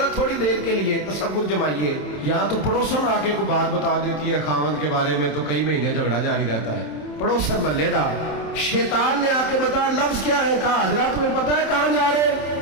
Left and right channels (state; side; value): late; right; 27 ms